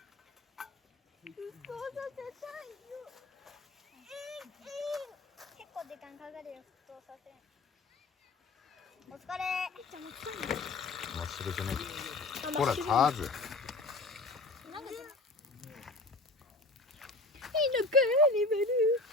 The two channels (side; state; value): right; quieter; 3.1 dB